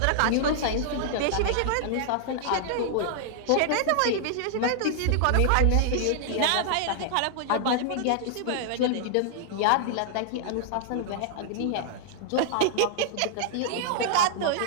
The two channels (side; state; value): both; different; correlation -0.01